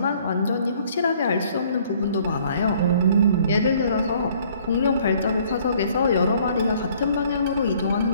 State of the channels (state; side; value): inverted; both; correlation -0.59